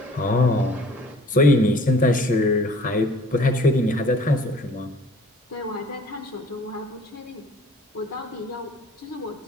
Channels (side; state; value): both; normal; correlation 0.52